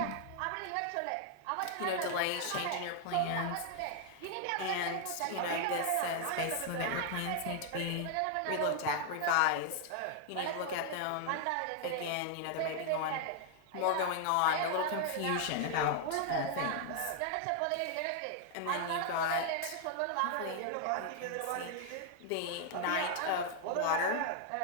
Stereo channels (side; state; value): both; different; correlation 0.00